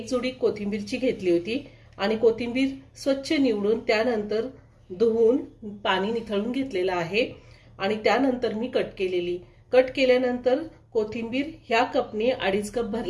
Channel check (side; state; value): both; identical; correlation 1.00